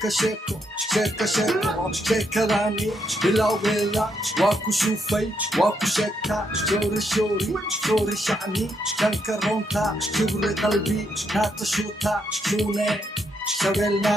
shako shaka shako shakadani bilawgeeda waa ku shufay waa ku sheegtaa shoori shoori shoori shacni shanka runta kibri qalbi naata shuuta shuune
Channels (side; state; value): both; normal; correlation 0.77